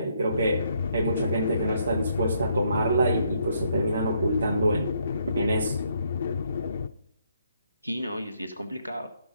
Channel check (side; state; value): both; inverted; correlation -0.72